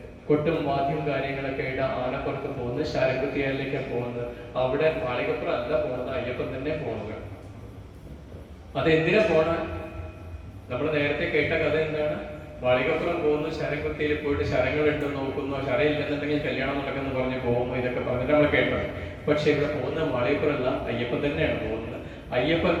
കൊട്ടും വാദ്യം കാര്യങ്ങളൊക്കെ ആയിട്ട് ആനപ്പുറത്ത് പോകുന്നത്, ശരംകുത്തിയാലിലേക്കാണ് പോകുന്നത്. അവിടെ മാളികപ്പുറം അല്ല പോകുന്നത്, അയ്യപ്പൻ തന്നെ പോകുന്നത്. അതെന്തിനാ പോണ? നമ്മൾ നേരത്തെ കേട്ട കഥ എന്താണ്? മാളികപ്പുറം പോകുന്നു, ശരംകുത്തിയിൽ പോയിട്ട് ശരങ്ങൾ ഉണ്ടെന്ന് നോക്കുന്നു, ശരം ഇല്ലെന്നുണ്ടെങ്കിൽ കല്യാണം നടക്കുന്നു പറഞ്ഞ് പോകുന്നു, ഇതൊക്കെ പറഞ്ഞിട്ട് നമ്മൾ കേട്ടത്. പക്ഷെ ഇവിടെ പോകുന്ന മാളികപ്പുറമല്ല, അയ്യപ്പൻ തന്നെയാണ് പോകുന്നത്. അയ്യപ്പൻ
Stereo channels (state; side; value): identical; both; correlation 1.00